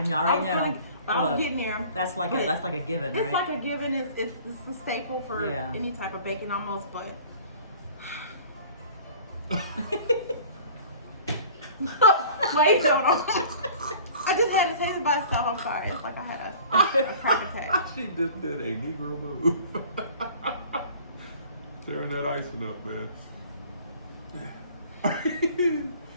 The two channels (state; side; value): inverted; both; correlation -0.47